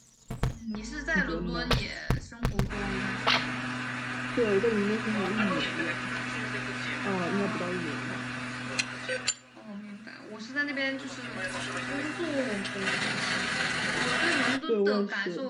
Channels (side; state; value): both; identical; correlation 1.00